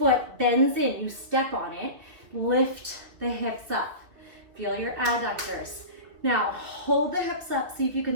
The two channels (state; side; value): late; left; 2.9 ms